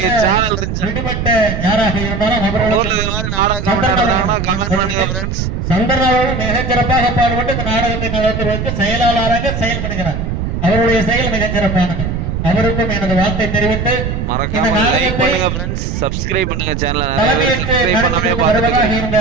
சேனல் இருந்துச்சு, உங்க ஊர்ல இந்த மாதிரி நாடகம் நடந்தாங்கன்னா கமெண்ட் பண்ணுங்க ஃப்ரெண்ட்ஸ். சந்திரனாவும் மிகச் சிறப்பாக பாடுபட்டு இந்த நாடகத்தை நடத்துவதற்கு செயலாளராக செயல்படுகிறார். அவருடைய செயல் மிகச் சிறப்பானது. அவருக்கும் எனது வாழ்த்தை தெரிவித்து மறக்காம லைக் பண்ணுங்க ஃப்ரெண்ட்ஸ், சப்ஸ்கிரைப் பண்ணுங்க சேனலை. நிறைய பேர் சப்ஸ்கிரைப் பண்ணாமே பார்த்துட்டு இருந்த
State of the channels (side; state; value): right; noise; rumble, 3 dB below the sound